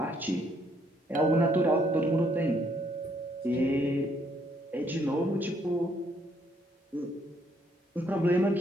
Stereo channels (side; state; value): both; normal; correlation 0.69